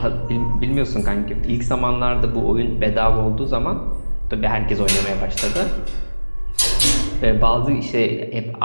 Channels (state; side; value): inverted; both; correlation -1.00